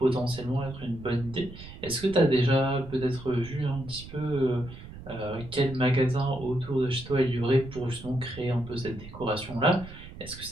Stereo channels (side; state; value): right; noise; rumble, 15 dB below the sound